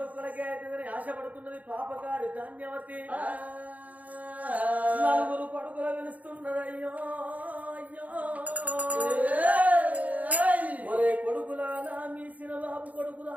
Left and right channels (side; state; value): left; late; 0.073 ms